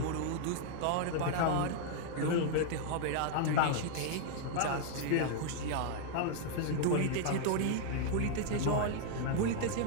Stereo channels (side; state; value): both; different; correlation 0.00